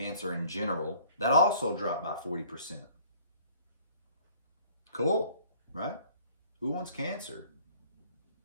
in general. That also dropped by 40%. Cool, right? Who wants cancer?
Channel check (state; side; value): inverted; both; correlation -0.55